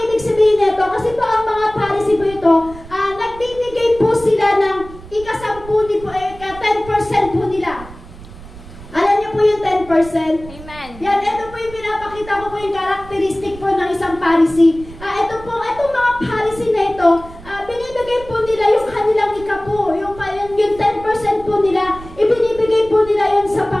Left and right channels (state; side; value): noise; right; rumble, 17 dB below the sound